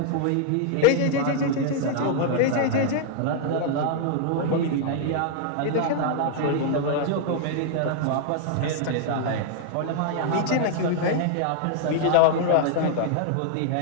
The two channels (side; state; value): both; different; correlation -0.01